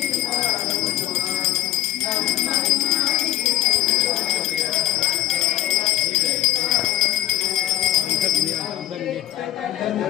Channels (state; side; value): quieter; right; 14.7 dB